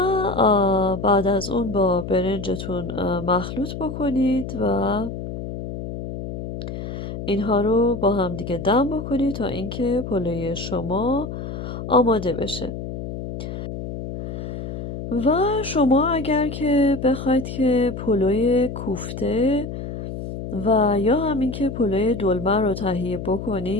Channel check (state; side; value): noise; left; hum, 7 dB below the sound